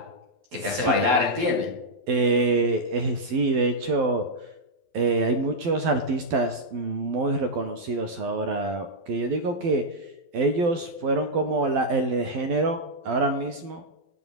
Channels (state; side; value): late; left; 12 ms